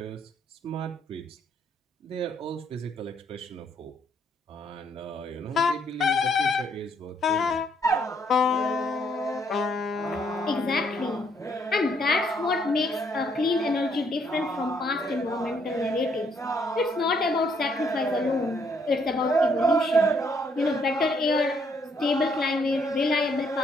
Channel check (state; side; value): normal; both; correlation 0.70